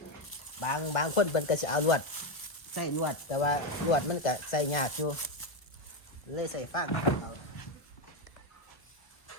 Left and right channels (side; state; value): right; late; 1.3 ms